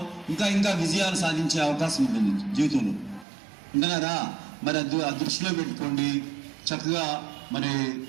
ఇంకా ఇంకా విజయాలు సాధించే అవకాశం ఉంటుంది జీవితంలో. ఉంటున్నారా? మరి ఆ దృష్టిలో పెట్టుకోండి. చక్కగా మరి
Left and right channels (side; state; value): left; drops out; at 3.2 s